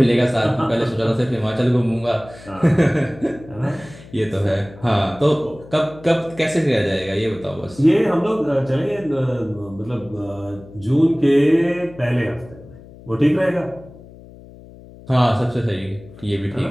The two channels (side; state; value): left; noise; hum, 20 dB below the sound